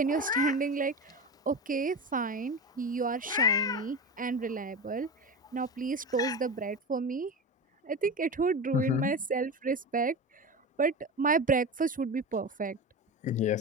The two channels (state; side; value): normal; both; correlation 0.25